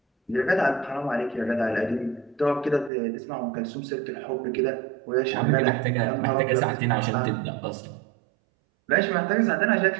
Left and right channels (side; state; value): left; drops out; at 2.9 s